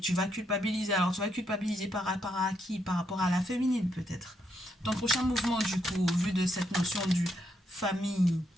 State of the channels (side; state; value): both; normal; correlation 0.78